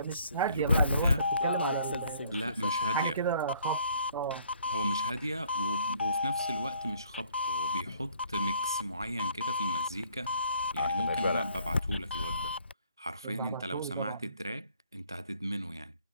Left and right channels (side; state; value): both; inverted; correlation -0.62